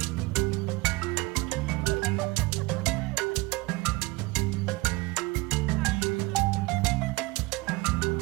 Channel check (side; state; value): left; quieter; 22.9 dB